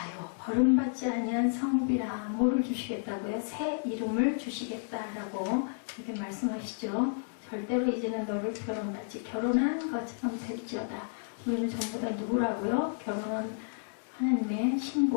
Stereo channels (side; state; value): right; silent; digital silence